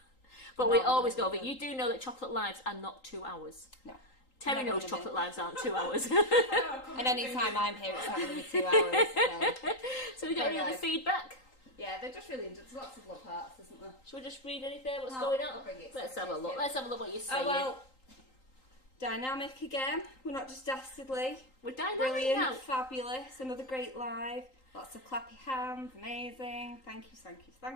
But we always go over. You do know that chocolate lives are not 2 hours. No. Terry knows chocolate lives aren't 2 hours. And any time I'm here, it's not going to be 2 hours. So we got any other feedback? Yeah, they're just really. There's lots of love hearts, isn't there? Should we just read anything? What's going on? Let's have a look. Let's have a look what you're saying. Oh well. Dynamic again. We're not just dastardly. We're dynamic Brilliant, now. fabulous. Another great live. Lots of clappy hands. Amazing. Thank you, thank you,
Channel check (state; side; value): late; right; 3.8 ms